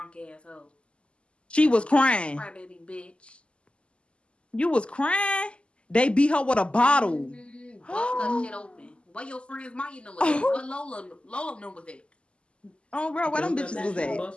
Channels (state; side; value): late; right; 0.053 ms